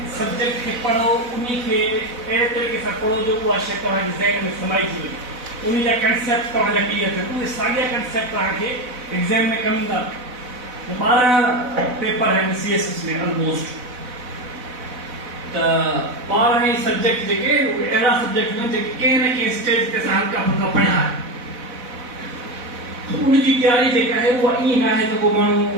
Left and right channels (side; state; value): left; late; 4.0 ms